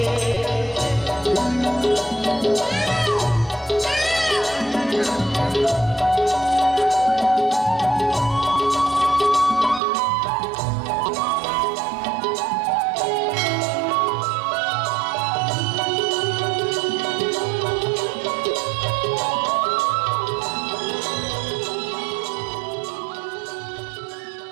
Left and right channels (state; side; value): drops out; left; at 9.8 s